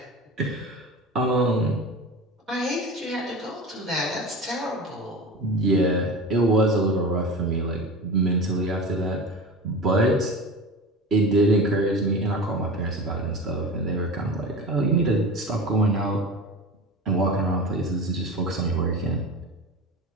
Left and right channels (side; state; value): both; normal; correlation 0.31